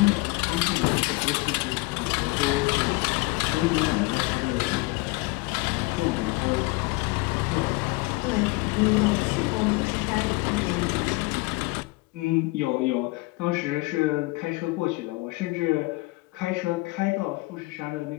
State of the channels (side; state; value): right; quieter; 24.1 dB